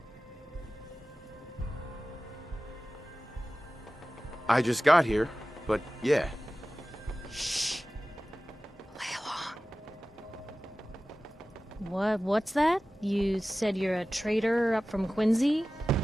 I just got here, but yeah. Shh. Play along. What's that? You said you're a trader up from Quincy?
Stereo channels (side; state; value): both; normal; correlation 0.96